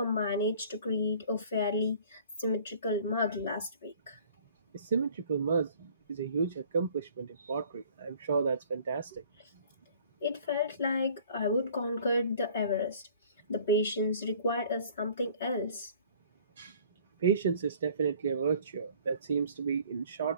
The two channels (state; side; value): inverted; both; correlation -0.52